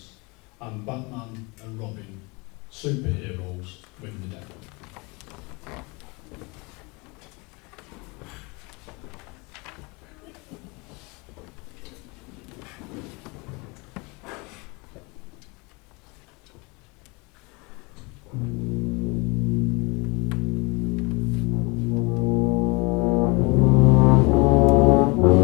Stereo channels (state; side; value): quieter; right; 27.7 dB